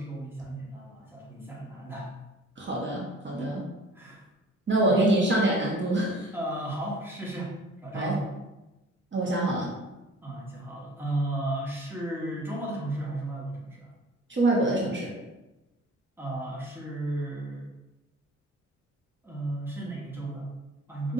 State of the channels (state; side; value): normal; both; correlation 0.47